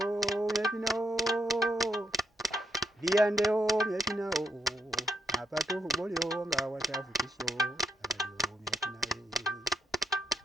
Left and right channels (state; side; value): normal; both; correlation 0.79